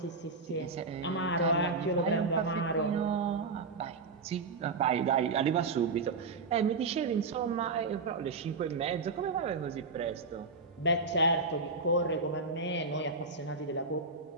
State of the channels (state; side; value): quieter; left; 4.0 dB